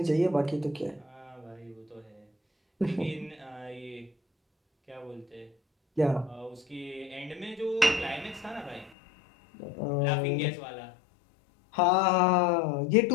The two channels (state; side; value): drops out; right; at 8.9 s